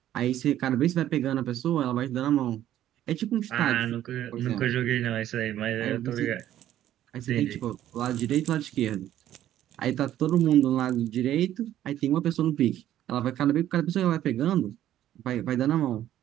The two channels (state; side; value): quieter; left; 12.3 dB